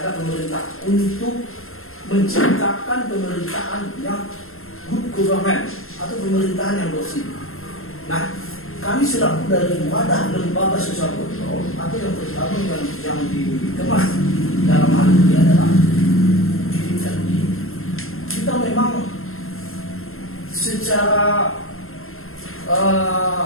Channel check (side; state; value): right; late; 0.61 ms